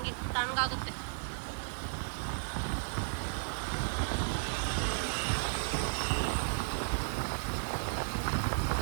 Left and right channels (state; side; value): silent; left; 55 dB below the other